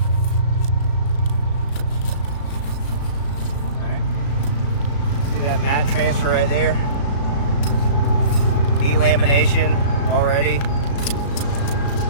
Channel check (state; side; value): late; right; 36 ms